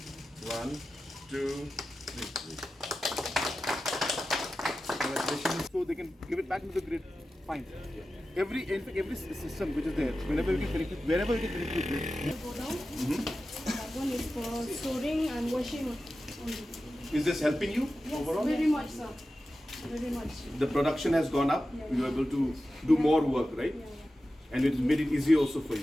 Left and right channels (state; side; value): normal; both; correlation 0.93